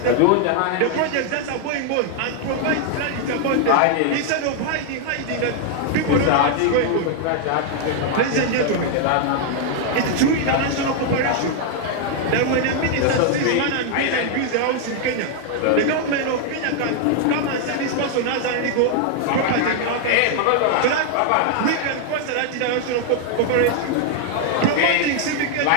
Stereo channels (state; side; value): different; both; correlation 0.00